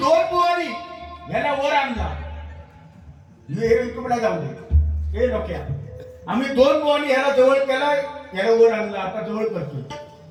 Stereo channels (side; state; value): both; identical; correlation 1.00